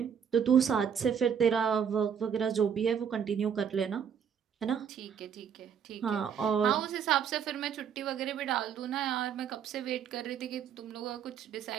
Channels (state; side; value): quieter; left; 7.8 dB